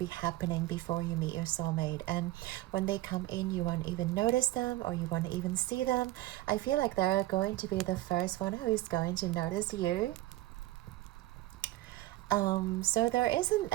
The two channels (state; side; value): quieter; left; 17.4 dB